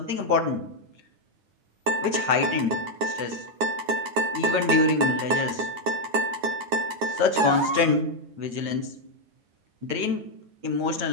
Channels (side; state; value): left; late; 9.5 ms